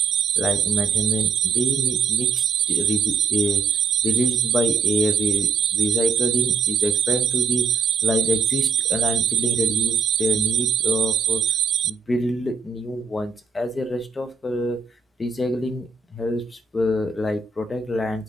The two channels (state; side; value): quieter; left; 4.8 dB